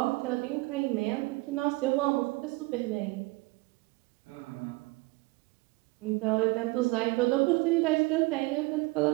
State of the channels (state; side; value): quieter; left; 24.4 dB